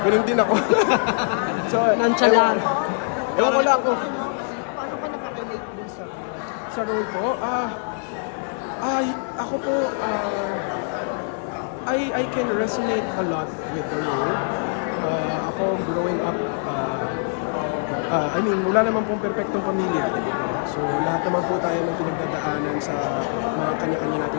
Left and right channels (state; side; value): silent; right; 59 dB below the other